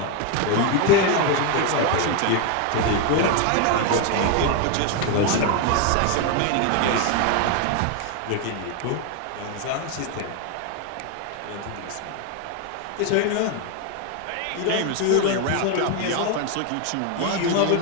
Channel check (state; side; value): different; both; correlation 0.01